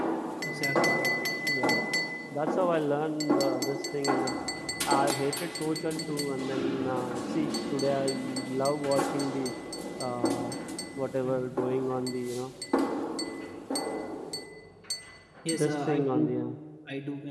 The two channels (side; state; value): both; identical; correlation 1.00